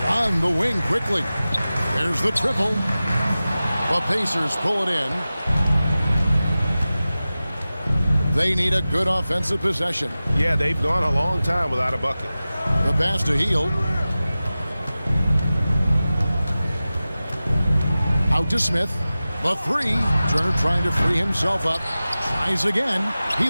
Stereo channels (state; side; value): inverted; both; correlation -0.96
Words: On the wing quickly. There's the triple. The Pacers pull it in. They need a good offensive possession. Yeah, they've gone a long time without a bucket. The pass to Hield. Out to Smith. The 3. Turner trying to free himself up. Tries again. He